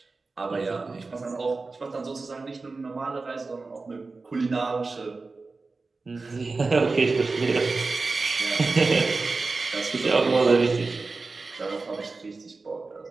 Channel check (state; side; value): quieter; left; 3.8 dB